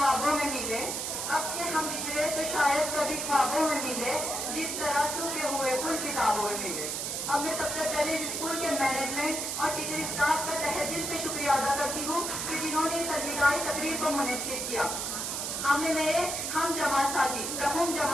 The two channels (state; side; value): noise; right; hiss, 2 dB below the sound